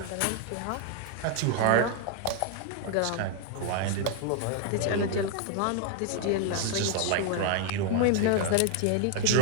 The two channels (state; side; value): different; both; correlation 0.00